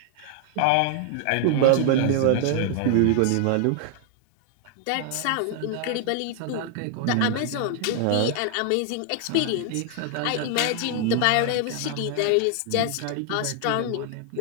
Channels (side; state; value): both; different; correlation 0.00